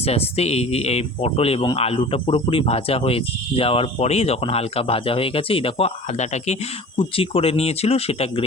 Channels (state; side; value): normal; both; correlation 0.41